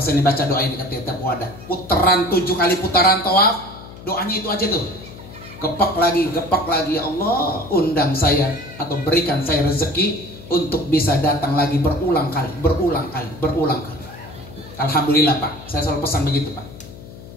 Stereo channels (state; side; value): noise; left; hum, 16 dB below the sound